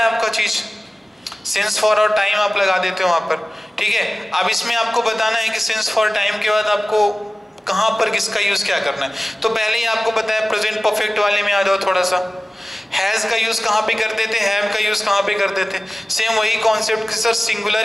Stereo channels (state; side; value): normal; both; correlation 0.97